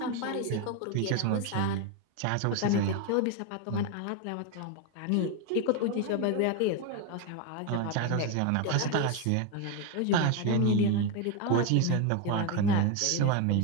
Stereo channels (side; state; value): both; different; correlation 0.02